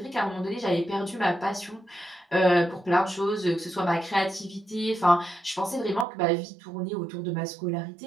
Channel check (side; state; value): left; drops out; at 6.1 s